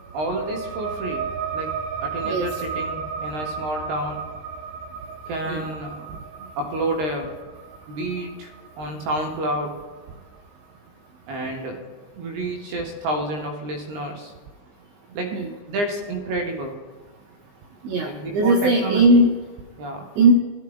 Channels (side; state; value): left; late; 20 ms